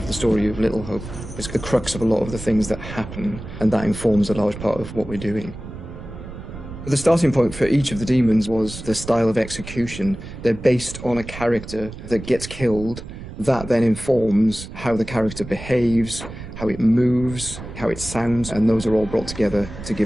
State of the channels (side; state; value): right; noise; rumble, 12 dB below the sound